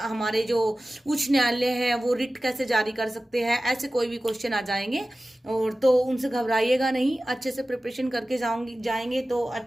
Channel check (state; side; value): normal; both; correlation 0.96